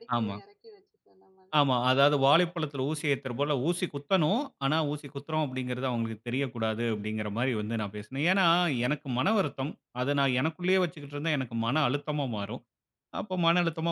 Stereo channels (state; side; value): identical; both; correlation 1.00